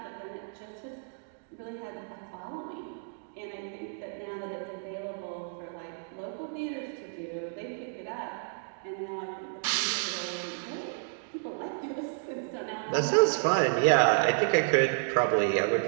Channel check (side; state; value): left; silent; digital silence